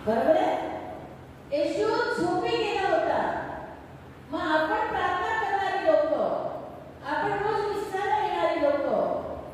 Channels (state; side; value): identical; both; correlation 1.00